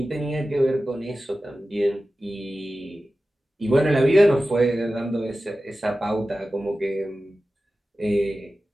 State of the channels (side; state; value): both; normal; correlation 0.95